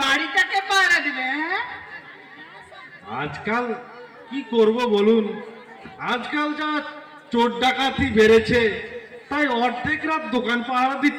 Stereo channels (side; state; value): both; identical; correlation 1.00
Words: বাড়িটাকে পাহারা দিবে? হ্যাঁ, আজকাল কি করব বলুন, আজকাল যা চোর ডাকাতি বেড়েছে, তাই অর্ধেক রাত দোকান পাহারা